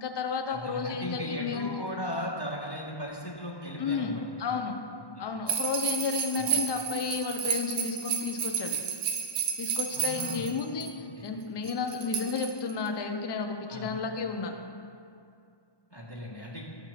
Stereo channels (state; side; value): late; right; 1.1 ms